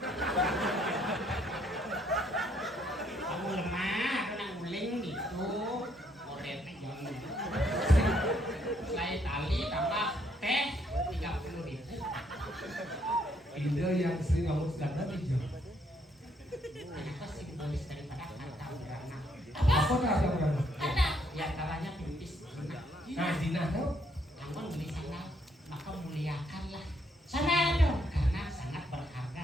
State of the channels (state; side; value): normal; both; correlation 0.70